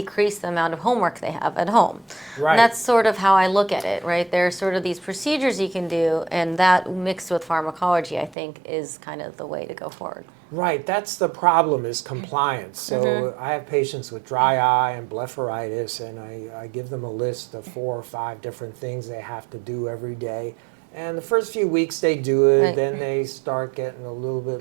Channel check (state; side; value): drops out; left; at 8.3 s